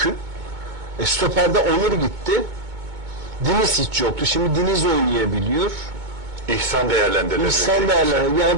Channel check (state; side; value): late; left; 2.2 ms